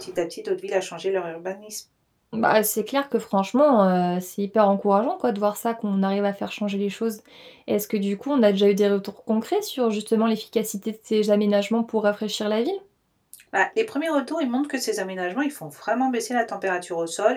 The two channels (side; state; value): both; identical; correlation 1.00